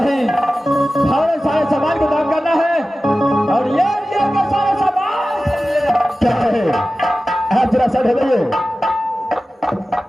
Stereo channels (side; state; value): both; normal; correlation 0.95